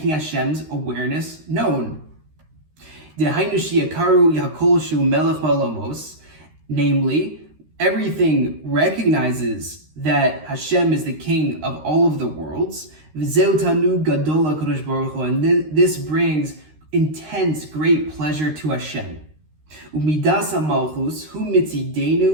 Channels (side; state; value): left; late; 13 ms